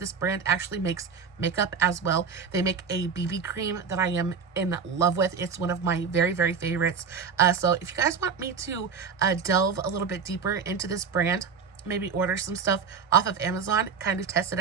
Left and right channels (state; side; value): quieter; left; 5.9 dB